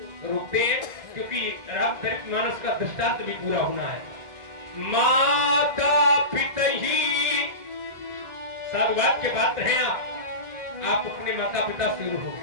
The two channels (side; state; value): left; late; 1.5 ms